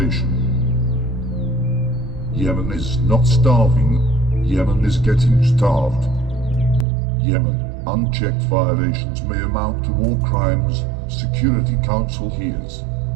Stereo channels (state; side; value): drops out; left; at 6.9 s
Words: Yemen is not starving, Yemen is getting starved. Yemen, unchecked violations may amount to war crimes, Security Council hears.